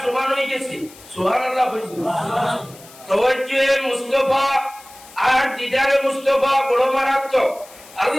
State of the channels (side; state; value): left; noise; hiss, 21 dB below the sound